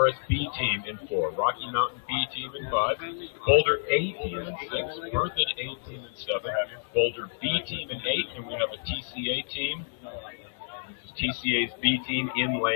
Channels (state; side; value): silent; right; 59 dB below the other